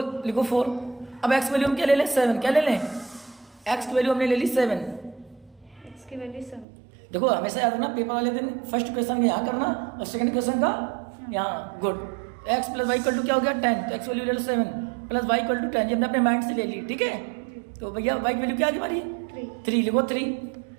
लिखो 4। अब एक्स वैल्यू हम क्या ले लें 7, क्या ले लें, एक्स की वैल्यू हमने ले ली 7। x की वैल्यू 7। देखो हमेशा याद रखना पेपर वाले दिन फर्स्ट क्वेश्चन यहाँ करना और सेकंड क्वेश्चन का यहाँ, good. X plus Y equal to क्या हो गया 10, तो एक्स वैल्यू ले लो 7 प्लस वाई इक्वल टू 10, ये हमने अपने माइंड से ले ली, ठीक है। तो भैया वाई की वैल्यू क्या आ गई हमारी 3, लिखो 3,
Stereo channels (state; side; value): drops out; left; at 6.7 s